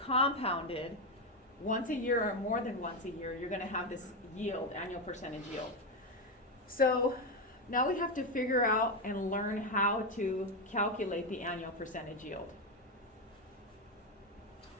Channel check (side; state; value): both; normal; correlation 0.09